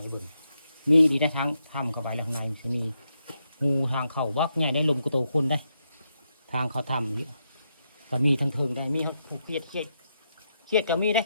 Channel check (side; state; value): both; inverted; correlation -0.82